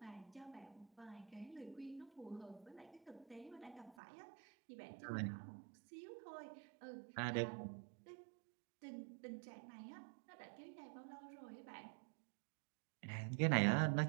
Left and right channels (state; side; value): drops out; left; at 4.0 s